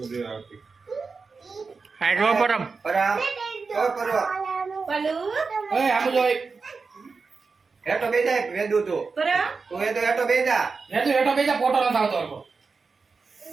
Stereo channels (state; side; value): quieter; left; 4.6 dB